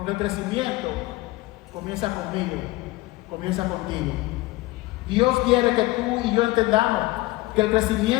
el crecimiento comienza conmigo, comienza contigo. Dios quiere que tú y yo entendamos que el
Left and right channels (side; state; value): right; quieter; 20.1 dB